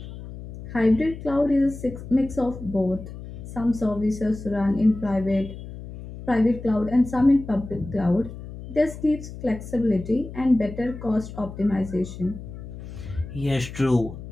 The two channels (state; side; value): noise; left; hum, 12 dB below the sound